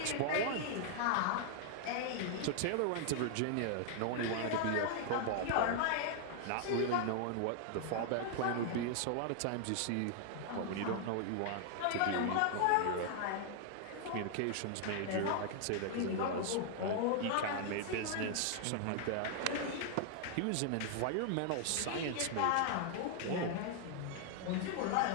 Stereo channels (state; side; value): different; both; correlation 0.00